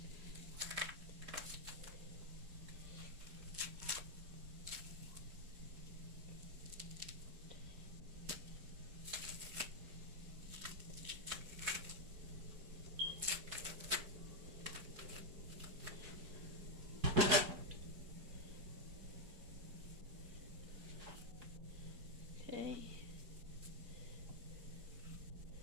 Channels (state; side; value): late; left; 4.8 ms